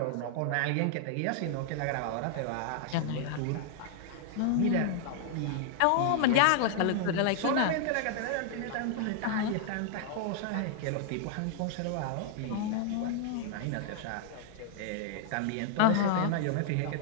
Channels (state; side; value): different; both; correlation -0.01